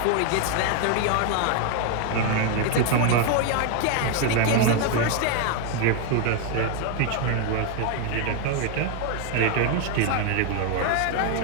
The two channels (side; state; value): both; different; correlation 0.00